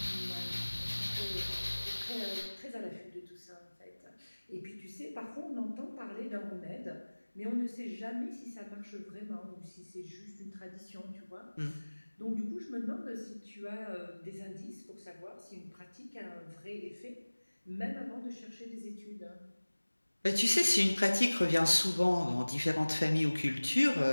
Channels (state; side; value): inverted; both; correlation -1.00